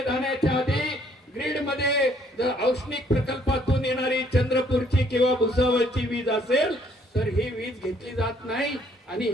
जाण्याच्या आधी, ग्रीड मध्ये जर औष्णिक प्रकल्पातून येणारी चंद्रपूरची किंवा भुसावळची वीज असेल तर ही वीज घेतली जात नाही आणि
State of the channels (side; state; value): both; normal; correlation 0.64